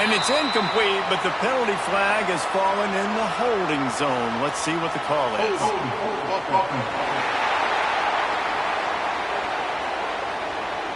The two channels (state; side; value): identical; both; correlation 1.00